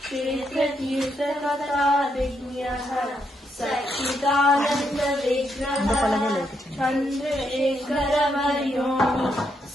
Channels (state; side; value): normal; both; correlation 0.79